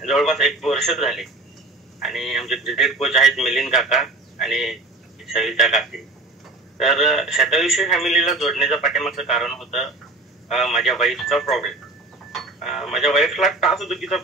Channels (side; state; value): left; quieter; 3.1 dB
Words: जवळपास 1 वर्ष झाले आणि आमचे क्रिकेट कोच आहेत मिलिंद काका आणि सविता काकी. तर शतविषयी फॅमिलीला जोडण्याचं पाठीमागचं कारण होतं माझ्या वाईफचा प्रॉब्लेम. माझ्या वाईफला टाचदुखीचा